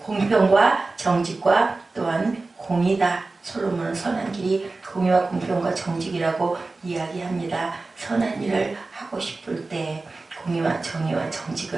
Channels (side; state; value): left; quieter; 3.5 dB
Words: 공평과 정직과 또한 공의다. 솔로몬은 선한 길이 공의와 공평과 정직이라고 이야기합니다. 선한 일을 하고 싶을 때 공의와 정의와